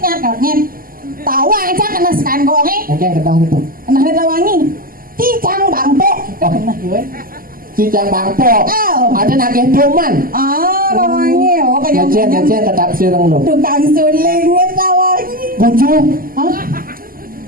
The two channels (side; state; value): left; late; 0.42 ms